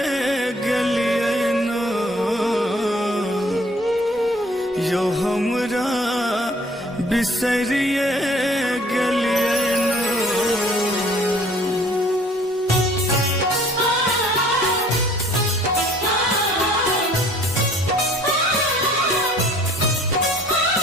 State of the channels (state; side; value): normal; both; correlation 0.55